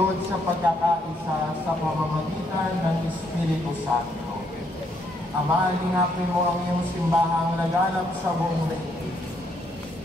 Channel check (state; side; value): normal; both; correlation 0.73